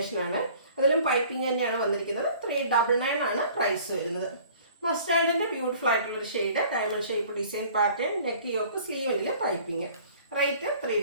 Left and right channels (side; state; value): both; inverted; correlation -0.51